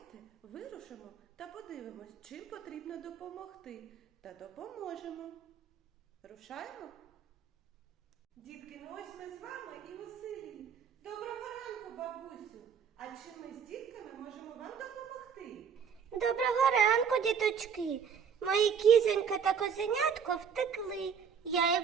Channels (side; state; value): left; quieter; 7.0 dB